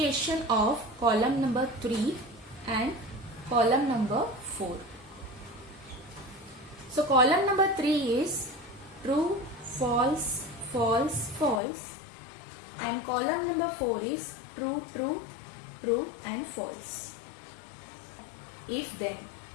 of column number 3 and column number 4. So column number 3 is true, false, false, false, and column number 4 is true, true, true and false. If then.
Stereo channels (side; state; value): right; drops out; at 11.6 s